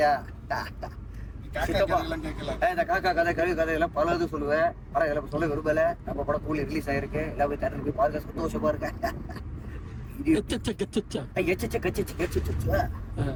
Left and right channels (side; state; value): both; identical; correlation 1.00